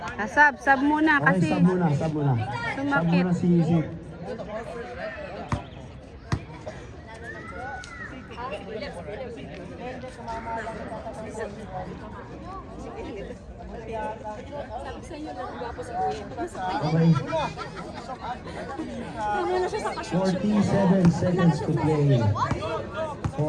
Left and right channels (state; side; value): identical; both; correlation 1.00